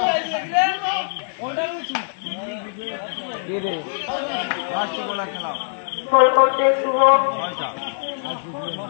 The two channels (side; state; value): right; silent; digital silence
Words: গোল করছে শুভ।